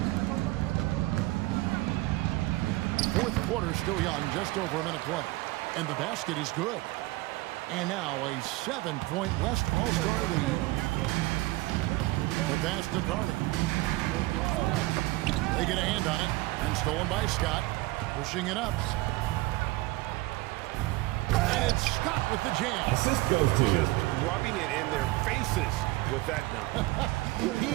4th quarter still young, just over a minute play. And the basket is good. And now a 7-point West All-Star lead. The pass to Carney. They get a hand on it. And stolen by Scott. Pushing it up. And it's Scott with the jam. Assist goes to Just rubbing it in their faces with that dunk. He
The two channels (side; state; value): left; quieter; 20.3 dB